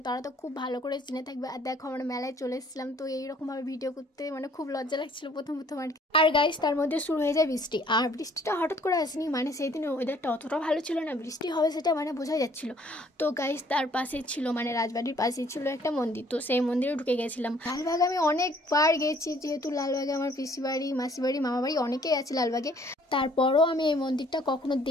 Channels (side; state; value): both; normal; correlation 0.59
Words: তারা তো খুব ভালো করে চিনে থাকবে। আর দেখো, আমরা মেলায় চলে এসেছিলাম, তো এইরকমভাবে ভিডিও করতে খুব লজ্জা লাগছিল প্রথম আর গাইস, তার মধ্যে শুরু হয়ে যায় বৃষ্টি। আর বৃষ্টিটা হঠাৎ করে আসেনি, সেই দিনের ওয়েদারটা অতটা ভালো ছিল না, বৃষ্টি হবে সেটা বোঝাই যাচ্ছিল। তো গাইস, তার পাশে ছিল রাজবাড়ির পাশে ছিল একটা মন্দির, তো সেই মন্দিরে ঢুকে গেছিলাম। লালবাগ আমি অনেকবার গেছি, যেহেতু লালবাগে আমার পিসি বাড়ি, মাসি বাড়ি, মামা বাড়ি অনেকেই আছে লালবাগে। তারপরও আমি এই মন্দিরটা কখনো